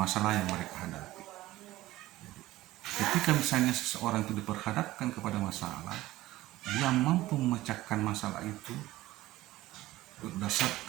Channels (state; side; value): quieter; left; 16.7 dB